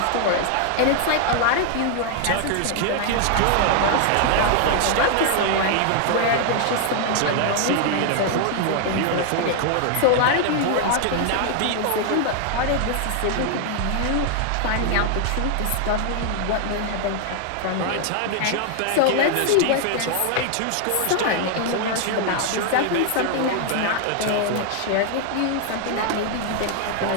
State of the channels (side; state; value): both; different; correlation 0.00